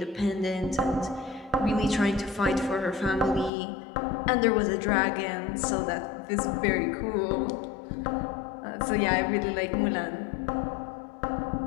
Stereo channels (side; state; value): right; drops out; at 3.5 s